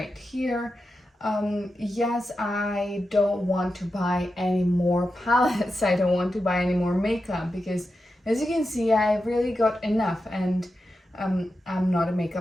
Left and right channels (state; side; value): normal; both; correlation 0.90